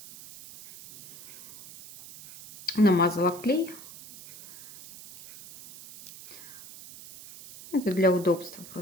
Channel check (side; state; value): right; noise; hiss, 17 dB below the sound